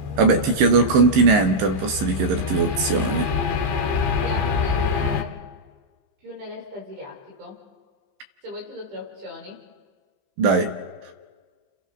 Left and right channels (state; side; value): late; left; 15 ms